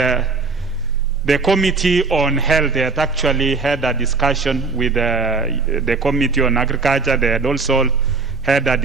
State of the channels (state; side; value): quieter; left; 4.3 dB